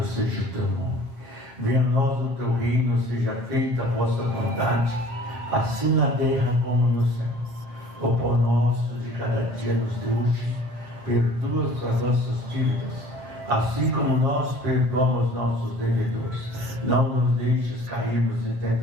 seja o teu nome. Venha a nós o teu reino, seja feita a vossa vontade, assim na terra como no céu. O pão nosso de cada dia nos dê hoje, perdoa as nossas dívidas, assim como nós perdoamos nossos devedores. Não nos deixes cairmos em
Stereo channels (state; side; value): late; left; 7.8 ms